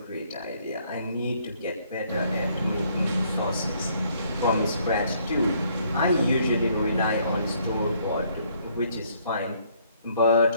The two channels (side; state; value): both; inverted; correlation -0.66